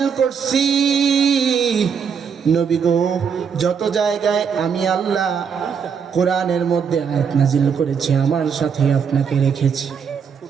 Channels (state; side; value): quieter; left; 6.7 dB